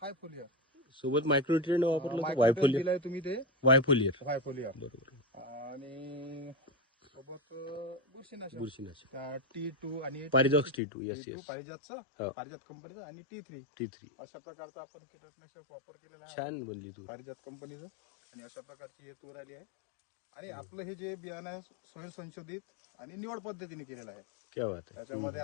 हाय फोलियर सोबत मायक्रोन्यूट्रिएंट वापरलं तर मायक्रोन्यूट्रिएंट दिलाय तुम्ही ते वायफोलियर. बरोबर. आणि सोबत बुरशीनाशक T2 आणि पारिजात T2. Yes T2 yes. पारिजात कंपनीचं आणि T3 अशा प्रकारचं आपण कीटकनाशक वापर केलेला आहे. छान बनली तू. पारिजात कंपनीचं आणि अशा प्रकारची हे तूर आली आहे. आणि आपलं हे जे बियाणं आहे स्वयं संशोधित आणि निवड पद्धतीने केलेलं आहे. क्या बात आहे. त्याच्यामध्ये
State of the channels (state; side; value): drops out; right; at 10.8 s